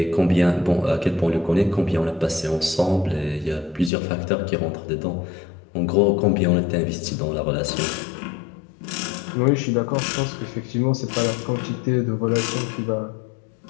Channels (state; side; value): drops out; right; at 3.9 s